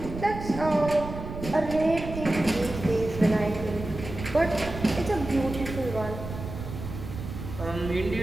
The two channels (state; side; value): noise; right; rumble, 9 dB below the sound